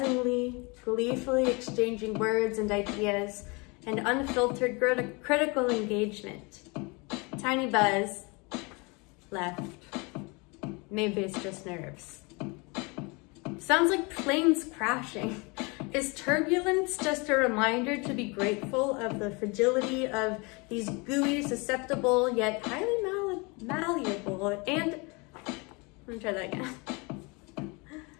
gleefully exchanging words and ideas, and unfiltered critical engagement. Tiny buzz, left. Maybe it's just nerves. Sounds like planes crashing. Is turbulence just a reminder to be grateful of the fragility of these gooey, susceptible, yet highly malleable, and, let me try that again.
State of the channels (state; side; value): quieter; right; 28.6 dB